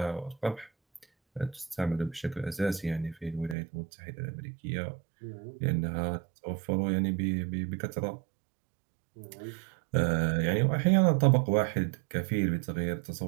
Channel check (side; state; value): left; drops out; at 3.6 s